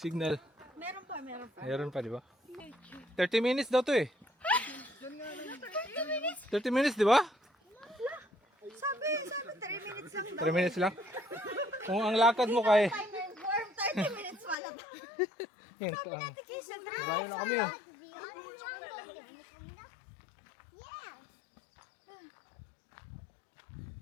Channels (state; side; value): drops out; right; at 14.6 s